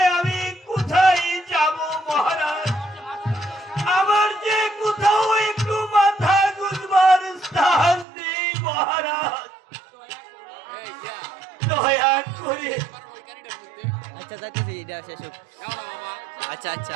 আমি কোথায় যাব মহারাজ? আমার যে কোথাও একটু মাথা গুঁজবার স্থান নেই মহারাজ, দয়া করে। আচ্ছা যাচ্ছি, এটা শেষ হোক। আচ্ছা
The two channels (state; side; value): drops out; left; at 8.1 s